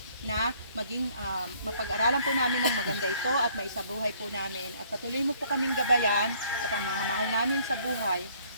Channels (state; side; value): inverted; both; correlation -0.61